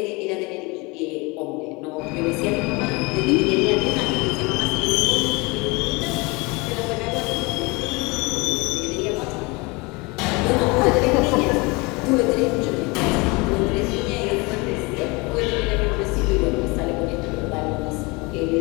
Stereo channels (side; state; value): right; quieter; 26.4 dB